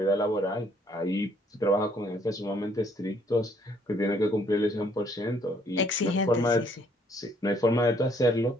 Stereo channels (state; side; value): normal; both; correlation 0.66